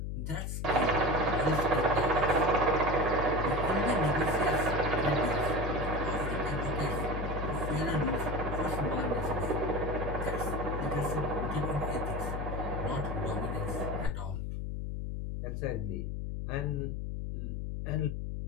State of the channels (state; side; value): noise; left; hum, 3 dB below the sound